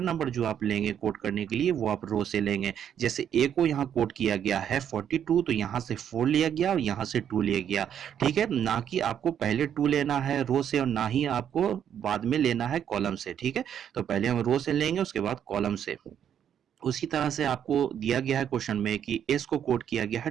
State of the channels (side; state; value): left; quieter; 9.2 dB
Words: नंबर जो आप लेंगे कोड करने के लिए वो आप रो से लेंगे। जैसे ए को यहाँ कोड किया गया है 42, तो यहाँ से 4 लिया गया और यहाँ से 2 लिया गया, ठीक है। ना कि आपको पहले 2 लेना है रो से और ना ही आपको बाद में लेना है कॉलम से, ठीक है। तो पहले हम रो से लेंगे, उसके बाद कॉलम से। उसी तरह से आपको दिया गया है क्वेश्चन में कि एस को कोड किया गया है